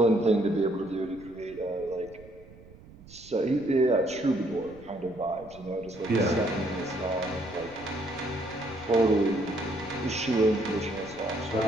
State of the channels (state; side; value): noise; right; rumble, 21 dB below the sound